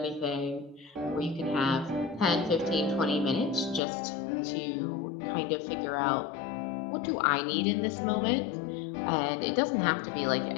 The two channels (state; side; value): drops out; right; at 3.8 s